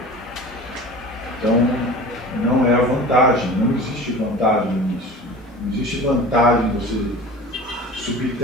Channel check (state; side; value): normal; both; correlation 0.38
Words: Então, não é a vantagem, não existe vantagem nisso. Não existe vantagem você